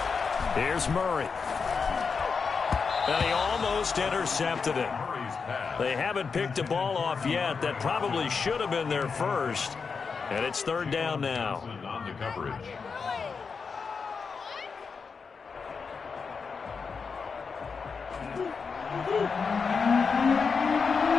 Here's Murray. And he almost intercepted it. They haven't picked a ball off yet. That probably should have been their first. And it's third down now. On the coverage.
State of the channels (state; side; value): quieter; right; 5.3 dB